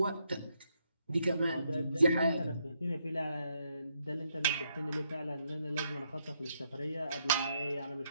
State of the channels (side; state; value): both; inverted; correlation -0.77